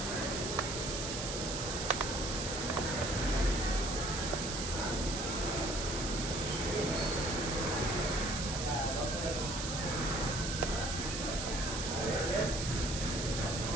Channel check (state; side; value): noise; right; hiss, 4 dB below the sound